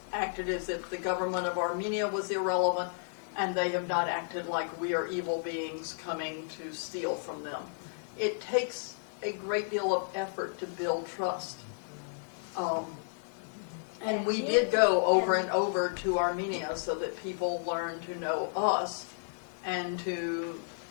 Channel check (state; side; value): silent; right; digital silence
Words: acted as if the government of Armenia was irrelevant, and they have not acted like we are evil beings coming to steal from them. It takes a great deal of effort to build trust. And we did go over and over to Armenia so that people learn to know us and to